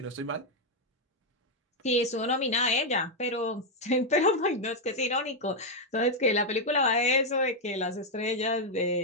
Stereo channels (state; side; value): normal; both; correlation 0.01